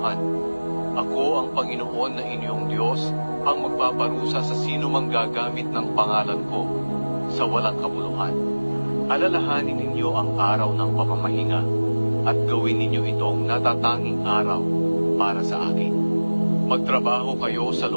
Ako ang Panginoon na inyong Diyos, ang magpaparusa sa sino mang gagamit ng pangalan ko sa walang kabuluhan. Alalahanin ninyo ang araw ng pamamahinga at gawin ninyo itong natatanging araw para sa akin. Magtrabaho kayo sa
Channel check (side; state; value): both; inverted; correlation -1.00